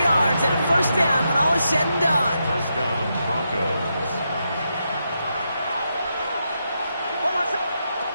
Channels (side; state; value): both; inverted; correlation -0.83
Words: yards and a 1st down when all is said and done. 1st down, Broncos.